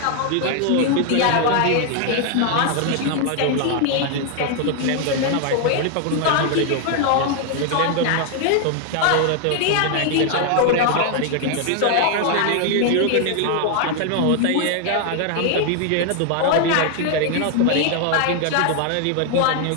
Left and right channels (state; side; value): different; both; correlation 0.00